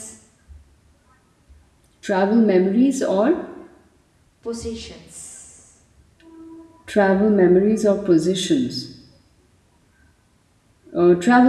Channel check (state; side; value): identical; both; correlation 1.00